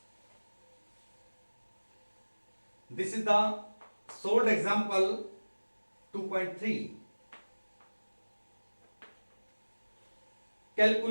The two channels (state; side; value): inverted; both; correlation -1.00